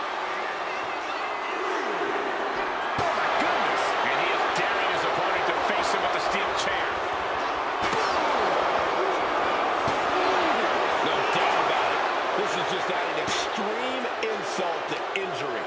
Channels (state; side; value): identical; both; correlation 1.00